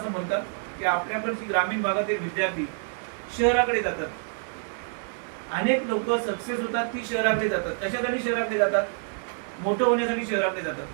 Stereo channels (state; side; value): silent; left; 60 dB below the other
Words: म्हणतात की आपल्याकडची ग्रामीण भागातील विद्यार्थी शहराकडे जातात. अनेक लोक सक्सेस होतात ती शहराकडे जातात. कशासाठी शहराकडे जातात? मोठं होण्यासाठी शहराकडे जातात.